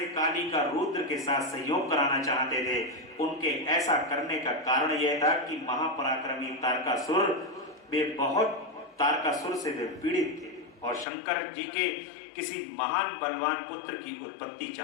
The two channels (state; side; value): drops out; right; at 11.1 s